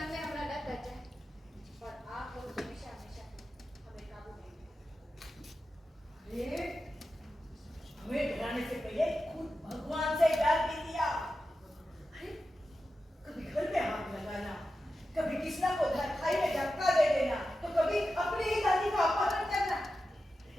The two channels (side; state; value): both; normal; correlation 0.92